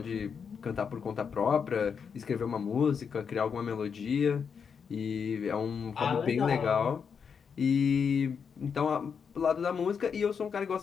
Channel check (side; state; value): right; quieter; 6.5 dB